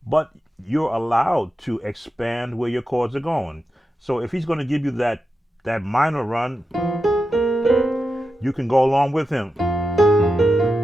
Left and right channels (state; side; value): normal; both; correlation 0.89